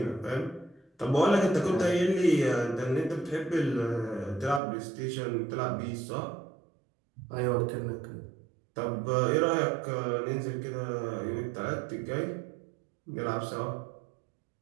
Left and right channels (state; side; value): drops out; left; at 4.6 s